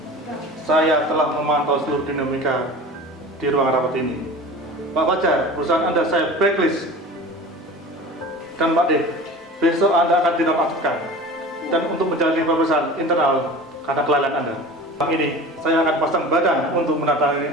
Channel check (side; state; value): both; normal; correlation 0.37